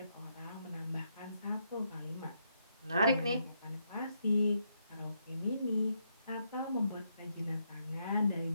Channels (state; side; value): inverted; both; correlation -0.78